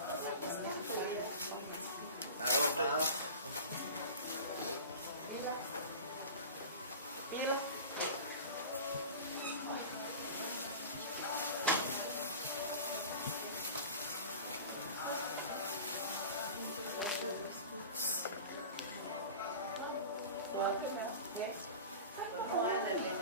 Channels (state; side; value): inverted; both; correlation -0.34